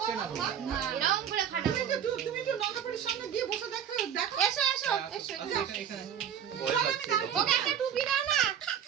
এরকম করে খাটা তুমি একটু নগাপড়ির সামনে গিয়ে বসে দেখো এসো এখানে ওকে একটা টুপি দাও না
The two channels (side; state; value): left; quieter; 9.0 dB